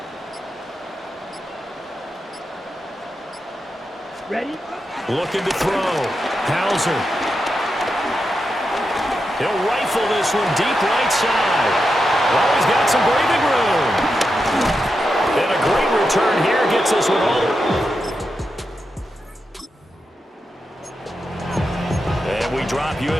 Ready? Looking to throw. Hauser. He'll rifle this one deep right side. Oh, he's got some breathing room. And a great return here gets this one all. And we drop you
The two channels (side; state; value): both; normal; correlation 0.87